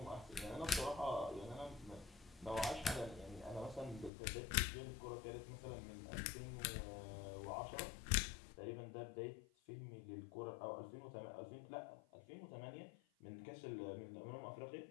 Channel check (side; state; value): right; drops out; at 4.1 s